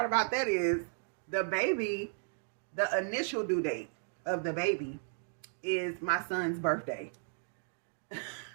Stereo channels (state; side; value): silent; left; digital silence